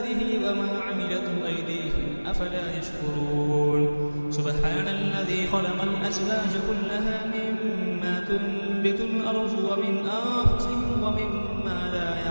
وما عملته أيديهم أفلا يشكرون. سبحان الذي خلق الأزواج كلها مما تنبت الأرض ومن أنفسهم ومما لا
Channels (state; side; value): inverted; both; correlation -1.00